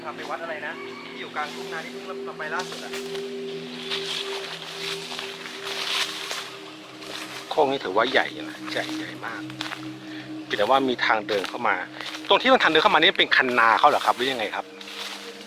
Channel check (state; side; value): identical; both; correlation 1.00